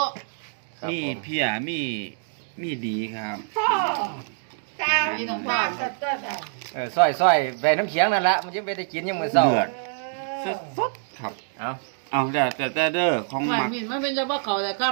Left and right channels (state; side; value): silent; left; digital silence